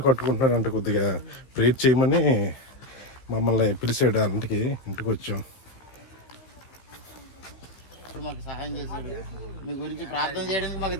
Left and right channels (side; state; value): right; late; 15 ms